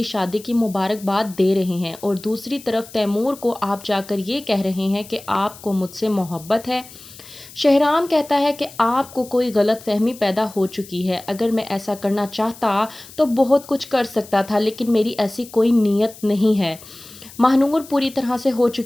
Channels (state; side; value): noise; left; hiss, 19 dB below the sound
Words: شادی کی مبارکباد دے رہے ہیں اور دوسری طرف تیمور کو آپ جا کر یہ کہہ رہے ہیں کہ آپ کو مجھ سے محبت ہے۔ شہرام کہتا ہے کہ آپ کو کوئی غلط فہمی پیدا ہو چکی ہے، اگر میں ایسا کرنا چاہتا تو بہت کچھ کر سکتا تھا، لیکن میری ایسی کوئی نیت نہیں ہے۔ ماہنور پوری طرح سے ہو